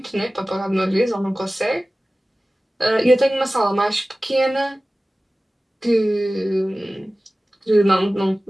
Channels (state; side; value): normal; both; correlation 0.97